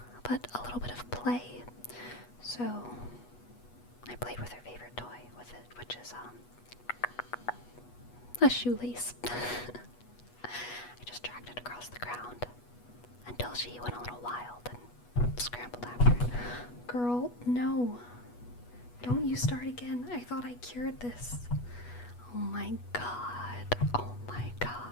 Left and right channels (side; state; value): right; late; 8.2 ms